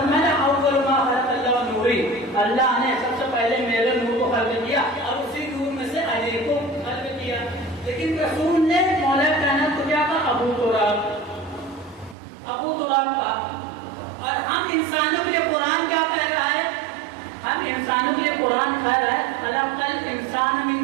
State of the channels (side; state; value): left; drops out; at 12.2 s